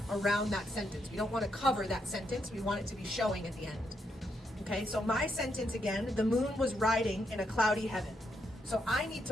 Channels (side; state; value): both; normal; correlation 0.79